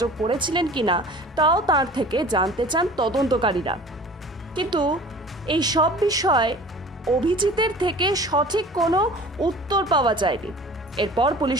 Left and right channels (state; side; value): normal; both; correlation 0.44